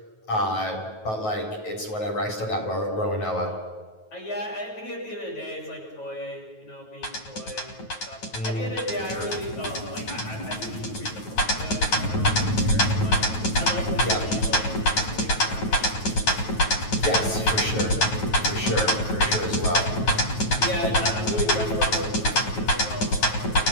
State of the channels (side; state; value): right; late; 9.3 ms